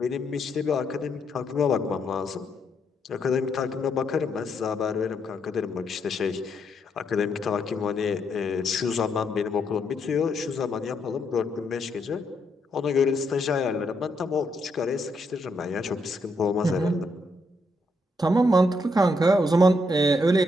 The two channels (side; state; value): both; normal; correlation 0.77